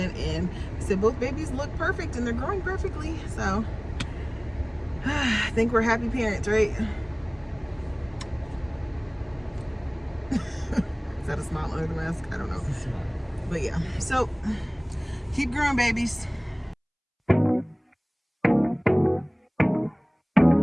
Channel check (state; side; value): identical; both; correlation 1.00